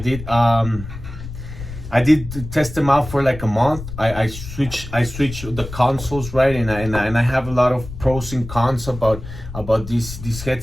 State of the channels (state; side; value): noise; left; rumble, 11 dB below the sound